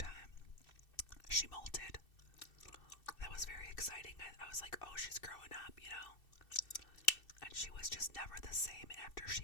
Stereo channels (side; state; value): right; late; 2.6 ms